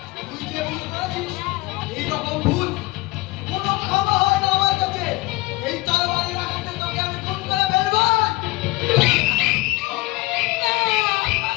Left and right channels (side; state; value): right; quieter; 21.3 dB